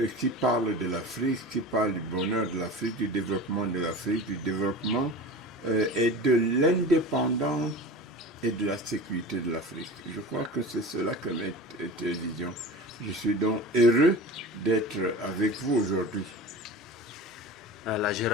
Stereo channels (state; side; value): normal; both; correlation 0.34